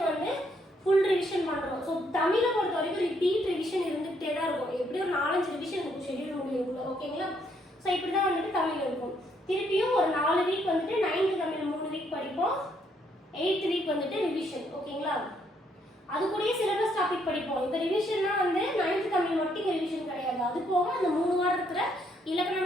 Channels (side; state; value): both; normal; correlation 0.71